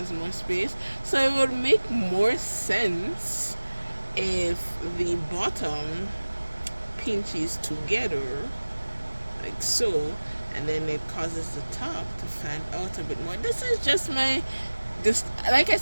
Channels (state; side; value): inverted; both; correlation -1.00